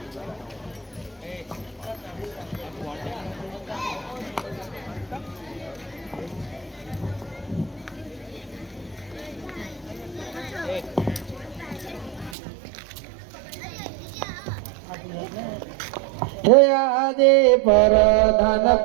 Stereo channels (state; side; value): drops out; left; at 12.4 s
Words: હે આજે પરધાન